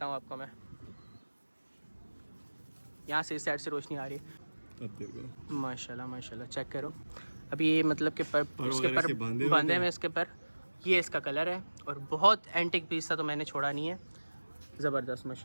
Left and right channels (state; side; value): inverted; both; correlation -1.00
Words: हूँ आपको मैं। यहाँ से इस साइड से रोशनी आ रही है। माशाल्लाह चेक करो। अभी ये मतलब कि इसके पर बांधे हुए, इसके पर ये इसका कलर है। और बहुत एंटिक पीस था तो मैंने छोड़ा नहीं है। ज़बरदस्त